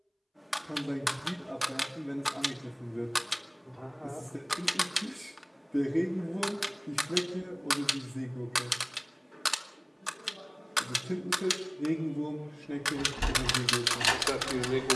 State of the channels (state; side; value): identical; both; correlation 1.00